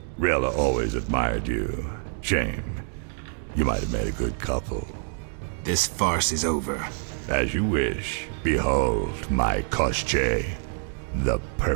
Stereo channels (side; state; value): left; silent; 61 dB below the other